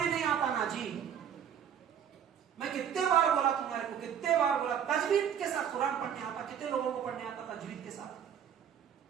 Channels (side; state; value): left; quieter; 8.6 dB